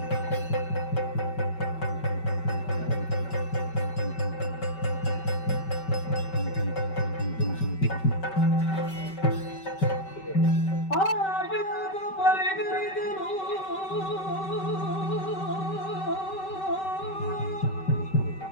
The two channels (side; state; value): right; late; 5.2 ms